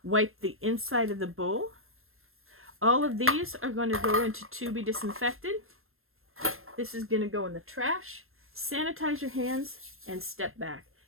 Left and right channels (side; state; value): left; late; 0.61 ms